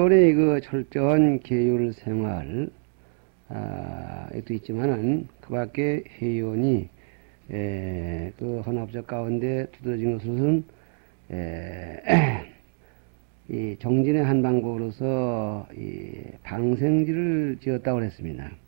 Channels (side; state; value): left; silent; digital silence